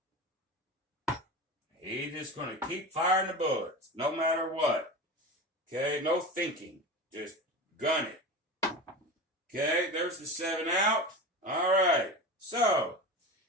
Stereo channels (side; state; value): both; normal; correlation 0.28